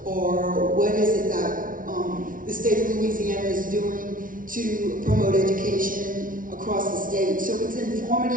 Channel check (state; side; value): late; left; 0.39 ms